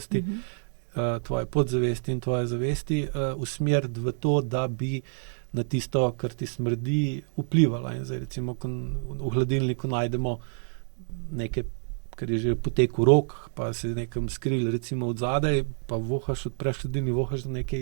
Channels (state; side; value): silent; left; digital silence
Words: tvoje podzavesti in tvoje zavesti, usmeriti v to, da bi na tisto, kar ti smrdi, vplivala. In zdaj recimo, v hladilniku najdemo nekaj, kar je že potekel rok, pa se nekam skril recimo od zadaj, pa vohaš, odpreš hladilnik, vohaš, da